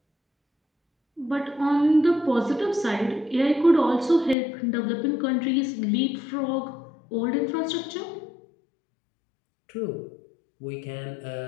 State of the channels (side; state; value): right; drops out; at 4.4 s